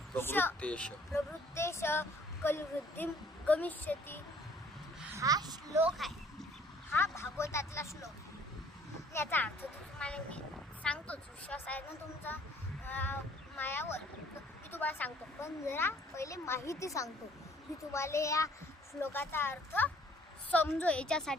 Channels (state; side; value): normal; both; correlation 0.58